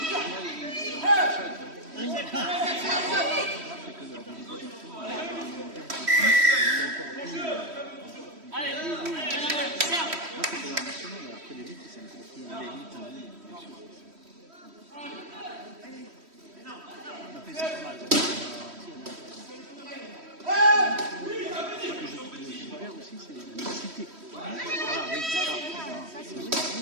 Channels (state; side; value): late; left; 3.1 ms